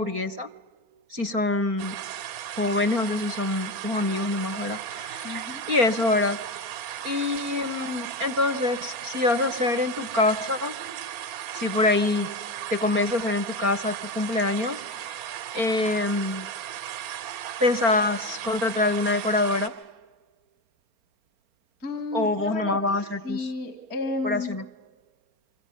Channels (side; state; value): left; late; 4.3 ms